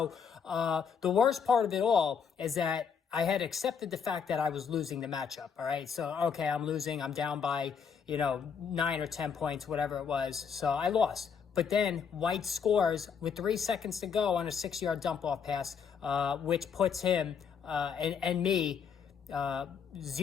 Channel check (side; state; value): right; quieter; 6.7 dB